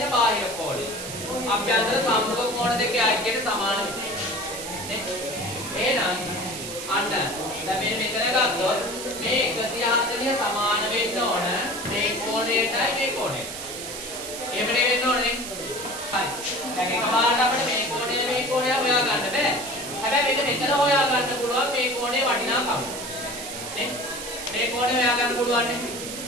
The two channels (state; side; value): noise; right; hiss, 8 dB below the sound